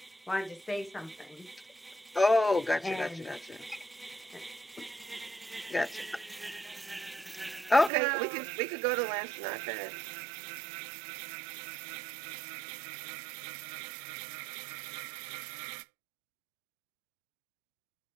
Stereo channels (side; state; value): left; drops out; at 7.9 s